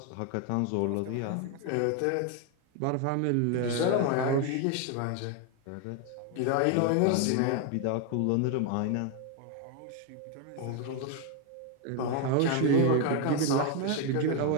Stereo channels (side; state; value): both; different; correlation 0.01